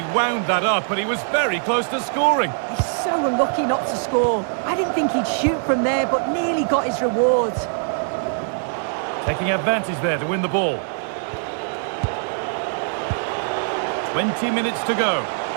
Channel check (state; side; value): silent; left; 63 dB below the other